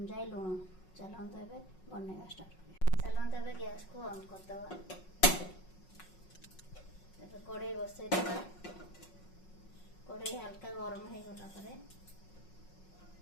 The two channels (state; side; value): late; right; 5.5 ms